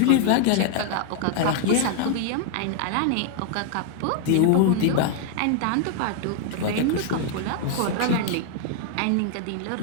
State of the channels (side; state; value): both; different; correlation 0.00